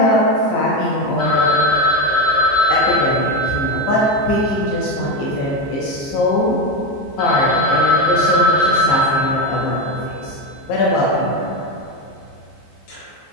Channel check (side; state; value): right; late; 14 ms